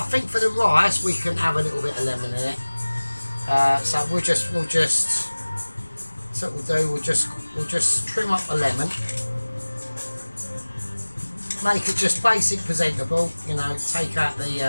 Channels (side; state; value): both; inverted; correlation -1.00